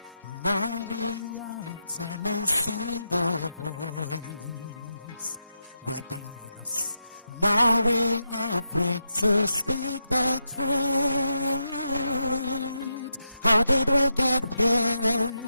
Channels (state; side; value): inverted; both; correlation -0.85